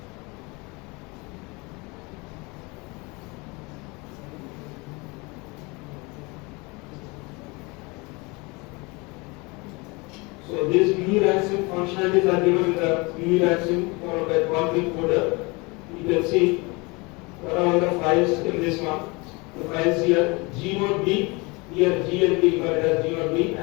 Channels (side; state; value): right; quieter; 26.7 dB